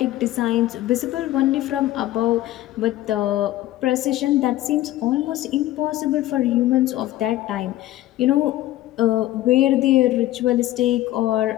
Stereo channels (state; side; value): quieter; right; 15.1 dB